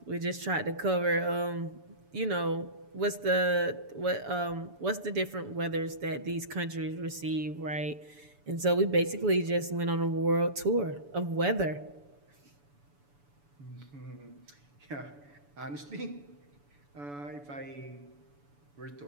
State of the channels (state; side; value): late; left; 7.0 ms